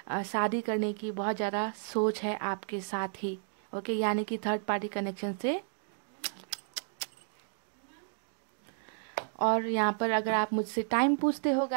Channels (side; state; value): left; silent; digital silence